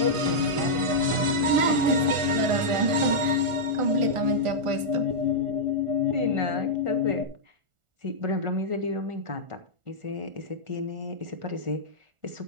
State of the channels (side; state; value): left; late; 1.4 ms